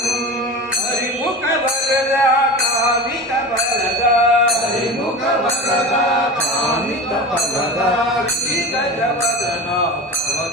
ಹರಿಮುಖ ವರದ ಕಾಮಿತ ಬಲದ ಹರಿಮುಖ ವರದ ಕಾಮಿತ ಬಲದ ಶ್ರೀ ಗಜವದನ ತವ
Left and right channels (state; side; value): normal; both; correlation 0.29